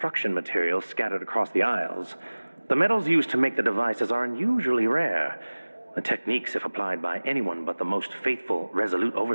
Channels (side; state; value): both; inverted; correlation -1.00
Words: materials scattered across the Isles. The metals used to make the devices are unusually rare. The techniques, if applied by anyone but the most faithful, resolute